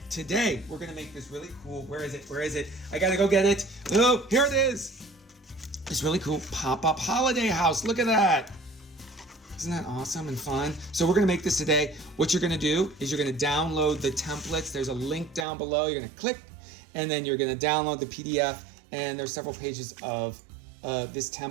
today we're going to make this really cool. Where is it? I got to go get it. Oh, here it is. This really cool pop-up holiday house. Look at that. Isn't that awesome and fun? So we're gonna make this today. What you're gonna do is you're gonna download the templates. There's a link down below. You're gonna click, and then you're gonna download the PDF, and there's several pages of this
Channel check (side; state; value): left; drops out; at 15.5 s